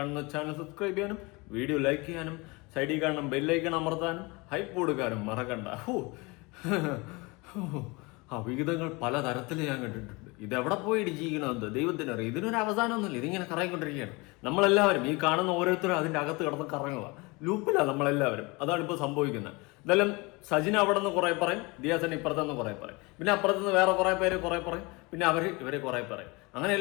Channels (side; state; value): right; quieter; 25.9 dB